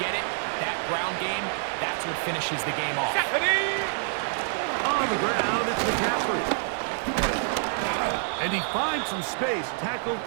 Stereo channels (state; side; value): silent; left; 60 dB below the other